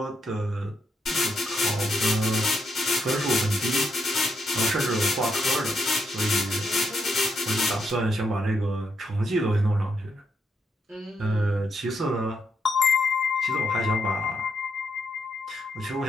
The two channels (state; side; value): normal; both; correlation 0.78